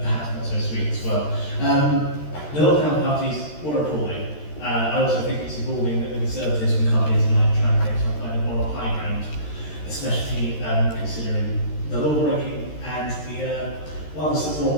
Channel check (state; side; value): late; right; 13 ms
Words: perhaps not so sweet as well. The lockdown parties were appalling. I also think it's appalling that the Conservatives and companies might try and take some kind of moral high ground, especially considering the law breaking and while the